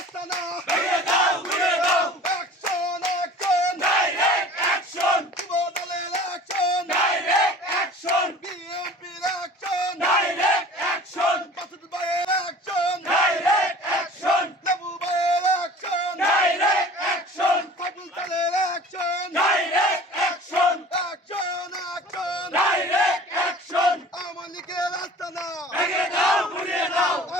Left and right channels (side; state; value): both; normal; correlation 0.44